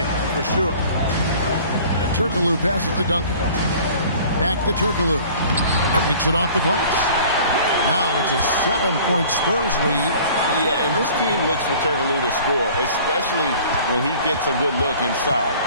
for sure. Turkoglu passes to Duncan. Back to Turkoglu. Makes it off the glass. Now it's a 7-point Spurs lead. Yeah, and this team looks for Turkoglu to score, especially when he gets a good look inside.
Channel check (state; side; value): inverted; both; correlation -0.48